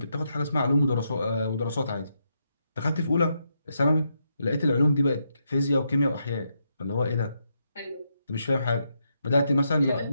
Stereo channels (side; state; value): both; inverted; correlation -0.81